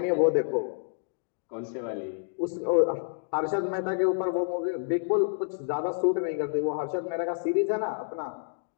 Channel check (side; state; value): right; silent; digital silence